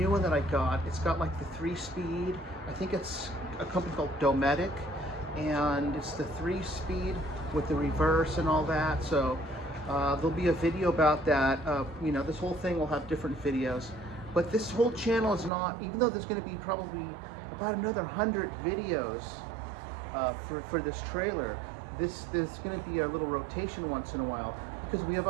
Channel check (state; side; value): drops out; left; at 15.5 s